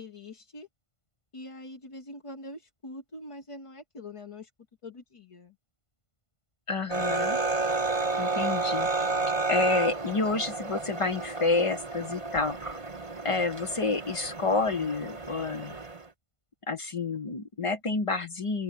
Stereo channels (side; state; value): right; late; 1.5 ms